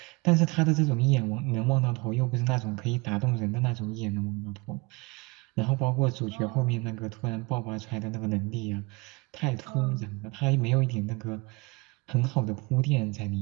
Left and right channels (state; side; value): quieter; left; 26.6 dB